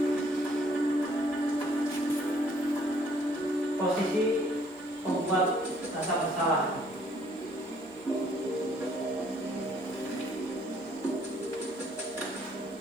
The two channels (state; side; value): normal; both; correlation 0.63